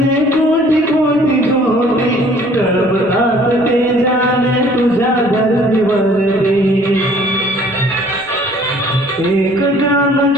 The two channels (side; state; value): left; noise; rumble, 28 dB below the sound